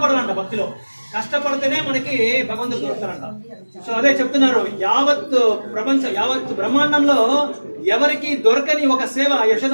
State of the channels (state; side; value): inverted; both; correlation -1.00